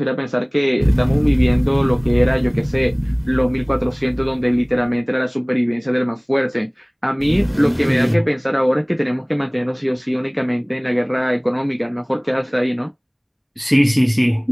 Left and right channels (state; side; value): identical; both; correlation 1.00